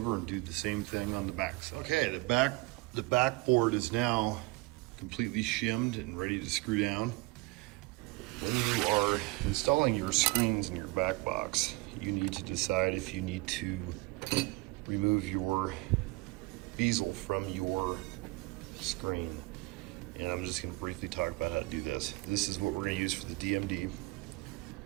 and do the same thing on the back side. Okay, the back board is now completely shimmed and ready to screw down. When you are installing your screens in your back box, you need to decide if you need to remove your bezel from your screen. And I'm just going to briefly talk about how to do this. This is what we're going to use for the DMD.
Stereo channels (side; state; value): left; quieter; 23.0 dB